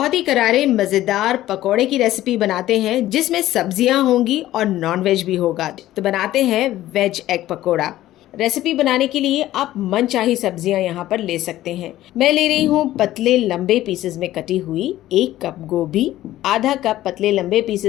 ही करारे मज़ेदार पकोड़े की रेसिपी बनाते हैं जिसमें सब्जियां होंगी और नॉनवेज भी होगा। तो बनाते हैं वेज एग पकोड़ा। रेसिपी बनाने के लिए आप मनचाही सब्जियां यहाँ पर ले सकते हैं। मैं ले रही हूँ पतले लंबे पीसेस में कटी हुई 1 कप गोभी, आधा कप पतले लंबे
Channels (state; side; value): quieter; right; 14.5 dB